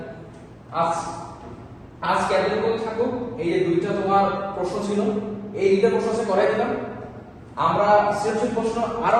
আজ এতটুকু থাকুক। এই যে দুইটা তোমার প্রশ্ন ছিল, এই দুইটা প্রশ্ন আছে করাই দিলাম। আমরা সৃজনশীল প্রশ্ন আরো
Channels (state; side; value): identical; both; correlation 1.00